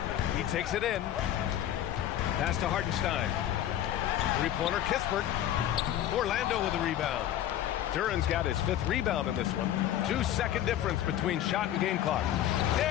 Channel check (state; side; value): quieter; right; 11.8 dB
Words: He takes it in. Pass to Hartenstein. Three-pointer Kispert. Orlando with the rebound. Duran's got his 5th rebound in this one. 2-second difference between shot and game clock.